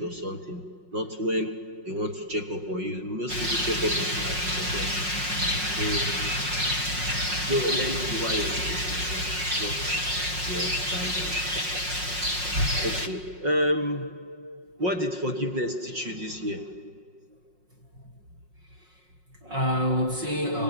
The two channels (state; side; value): late; left; 5.5 ms